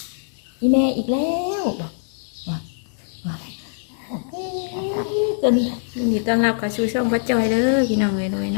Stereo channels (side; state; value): right; silent; digital silence